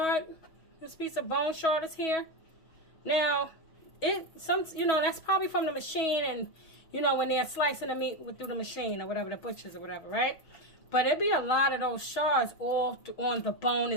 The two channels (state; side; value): late; right; 6.2 ms